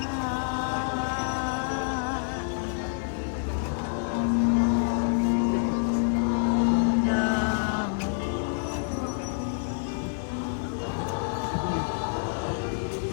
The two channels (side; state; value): right; silent; digital silence